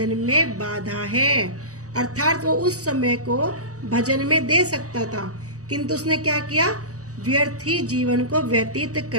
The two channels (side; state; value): left; late; 0.66 ms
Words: में बाधा है। अर्थात वो उस समय को भजन में दे सकता था, किंतु उसने क्या किया, व्यर्थ ही जीवन को व्यतीत